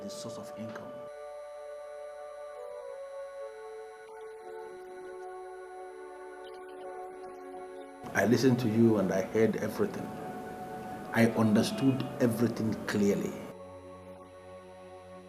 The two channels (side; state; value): both; identical; correlation 1.00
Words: his source of income. Zion, are you listening to me at all? Did you hear what I just told you? I listened to you and I heard everything. I understood everything clearly. Zion,